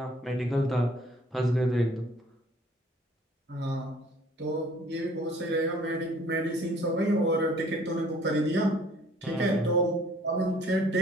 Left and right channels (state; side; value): normal; both; correlation 0.56